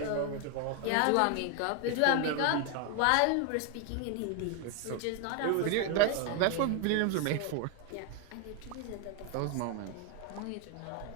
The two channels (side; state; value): both; different; correlation 0.01